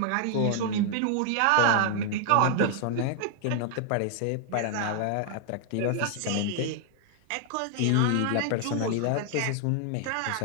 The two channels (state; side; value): different; both; correlation 0.00